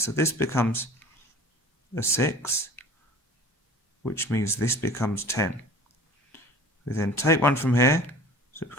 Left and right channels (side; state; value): both; normal; correlation 0.42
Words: this becomes a 6, which means this becomes 10. We then take 1 from here, so it